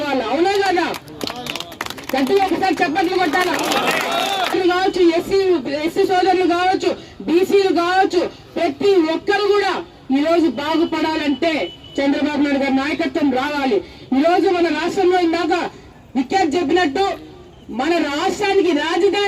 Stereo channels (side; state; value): both; identical; correlation 1.00